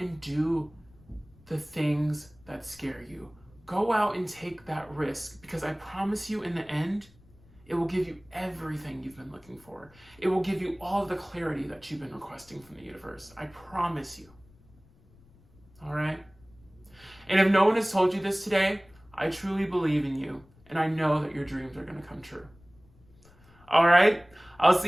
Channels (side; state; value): left; noise; rumble, 27 dB below the sound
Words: and do the things that scare you. Go out and take that risk, because I promise you in the end, it will give you everything you've been looking for. It will give you all of the clarity that you've been requesting from the universe. I promise you. All right? And if no one has told you this today, I truly believe in you, and I know that your dreams are going to come true. All right? I'll